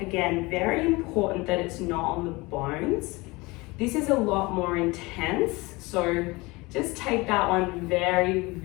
very important that it's not on the bones. This is a lot more intense, so just take that one very,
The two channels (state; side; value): quieter; right; 23.5 dB